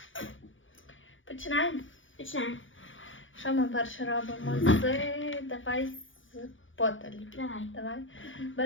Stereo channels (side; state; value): right; late; 0.57 ms